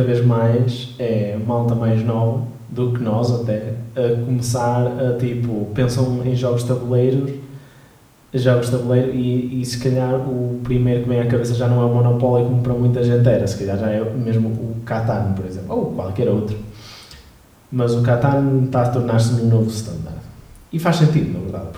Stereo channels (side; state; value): both; identical; correlation 1.00